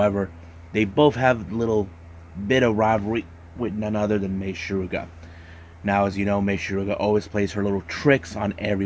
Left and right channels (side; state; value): both; identical; correlation 1.00